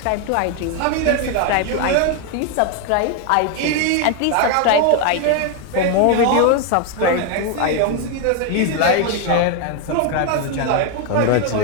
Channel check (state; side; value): different; both; correlation 0.01